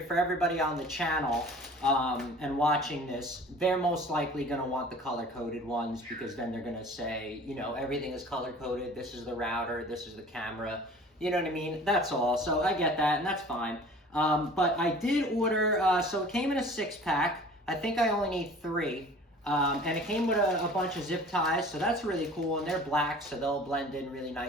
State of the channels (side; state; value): both; normal; correlation 0.46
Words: for everybody on the channel and watching this, they're most likely going to want the color-coded ones because then they're going to say, everything is color-coded. This is the router. This is the camera. You know what I mean? That's all. So I get that, and that's fine. But I did order, so it came in a 6-pack. I think I only need 3. And it came with a bunch of zip ties, so that's really cool. And they're black, so they'll blend in really